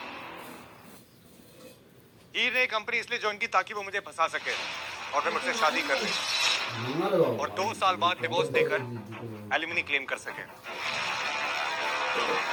हीर ने कंपनी इसलिए ज्वाइन की ताकि वो मुझे फंसा सके और फिर मुझसे शादी कर ले और 2 साल बाद डिवोर्स देकर एलिमनी क्लेम कर सके।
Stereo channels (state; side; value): identical; both; correlation 1.00